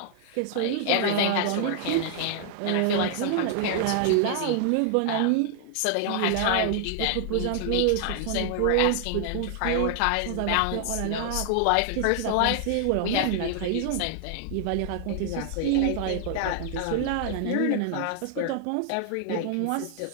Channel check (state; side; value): different; both; correlation 0.00